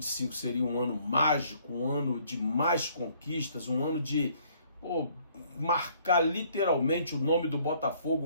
seria um ano mágico, um ano de mais conquistas, um ano de marcar literalmente o nome do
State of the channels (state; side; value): inverted; both; correlation -0.63